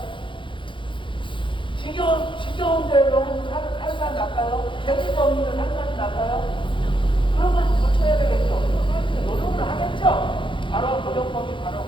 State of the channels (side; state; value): right; late; 0.24 ms